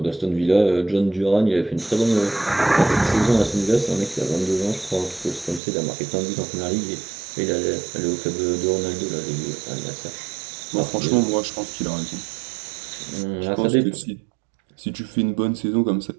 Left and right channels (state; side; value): drops out; left; at 5.6 s